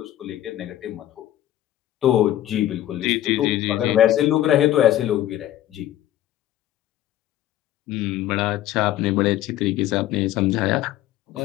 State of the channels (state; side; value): quieter; right; 13.0 dB